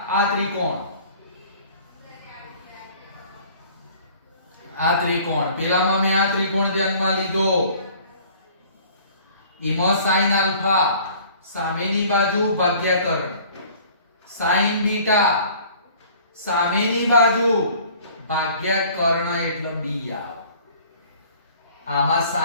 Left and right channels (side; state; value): both; inverted; correlation -0.51